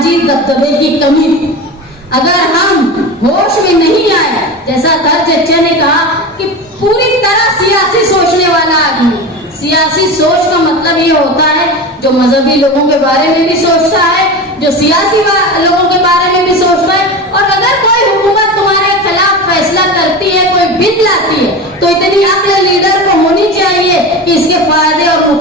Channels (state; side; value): normal; both; correlation 0.27